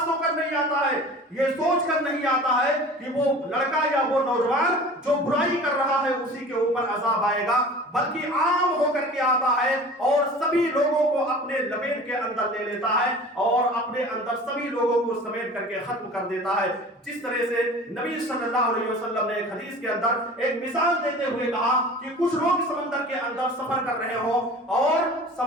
ہو کر نہیں آتا ہے، یہ سوچ کر نہیں آتا ہے کہ وہ لڑکا یا وہ نوجوان جو برائی کر رہا ہے اسی کے اوپر عذاب آئے گا، بلکہ عام ہو کر کے آتا ہے اور سبھی لوگوں کو اپنے لپیٹ کے اندر لے لیتا ہے اور اپنے اندر سبھی لوگوں کو سمیٹ کر کے ختم کر دیتا ہے. جس طرح سے نبی صلی اللہ علیہ وسلم نے ایک حدیث کے اندر ایک مثال دیتے ہوئے کہا کہ کچھ لوگ سمندر کے اندر سفر کر رہے ہوں اور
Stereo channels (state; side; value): normal; both; correlation 0.41